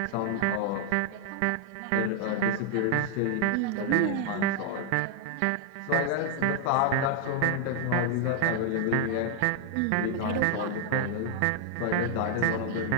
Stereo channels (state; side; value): different; both; correlation 0.00